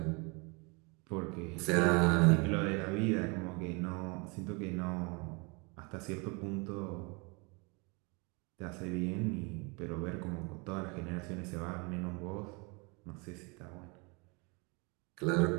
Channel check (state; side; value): quieter; left; 30.3 dB